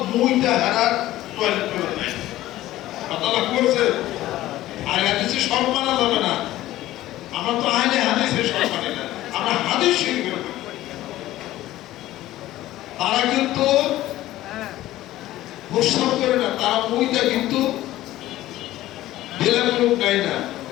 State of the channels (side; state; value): right; quieter; 15.3 dB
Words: মুইটা হারার টয়লেট করে নাই, কথা লক্ষ্য করছে? আহলে হাদিসে সব মানা যাবে না, আমরা তো আহলে হাদিসে সব মানি না, আমরা হাদিস শরীফের মানি। তারা কিন্তু প্রস্রাব করে না, তারা মুইটা কিন্তু বেলাগুলো গায় না,